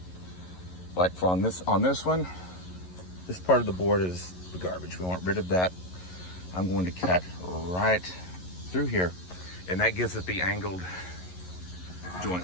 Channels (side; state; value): right; late; 11 ms